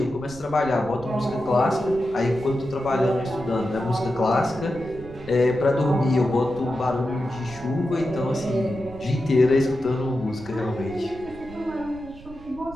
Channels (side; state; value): right; noise; rumble, 18 dB below the sound